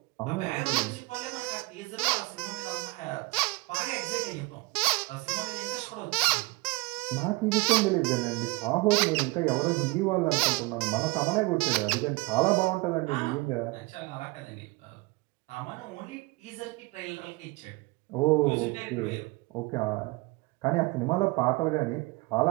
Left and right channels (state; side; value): quieter; left; 24.6 dB